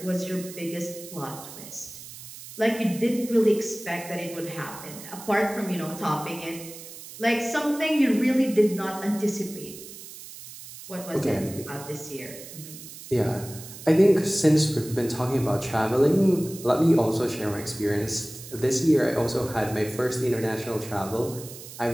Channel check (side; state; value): right; noise; hiss, 14 dB below the sound